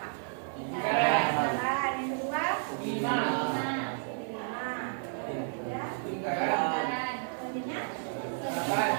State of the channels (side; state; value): left; silent; digital silence